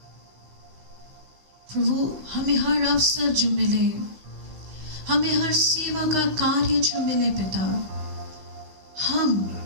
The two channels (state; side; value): late; left; 16 ms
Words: प्रभु हमें हर अवसर जो मिले, हमें हर सेवा का कार्य जो मिले पिता,